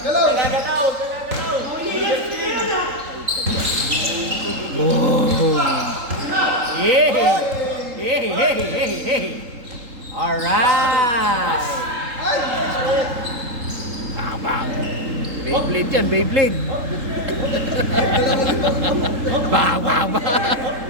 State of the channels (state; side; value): late; left; 3.8 ms